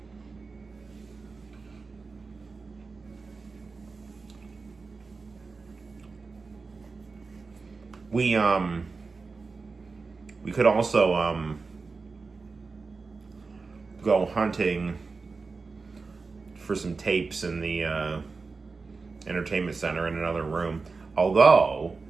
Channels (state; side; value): quieter; left; 4.3 dB